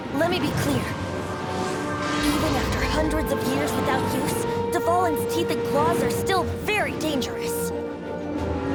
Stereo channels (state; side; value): identical; both; correlation 1.00